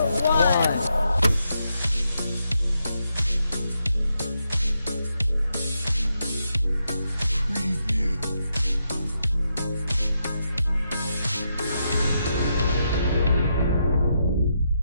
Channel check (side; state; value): both; inverted; correlation -0.82